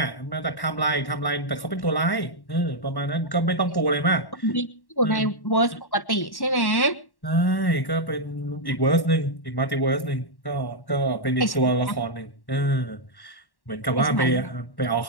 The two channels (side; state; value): right; late; 1.1 ms